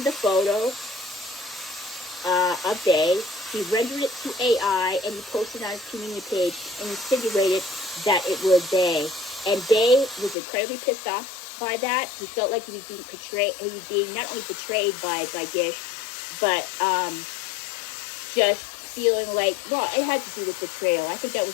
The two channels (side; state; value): right; drops out; at 10.4 s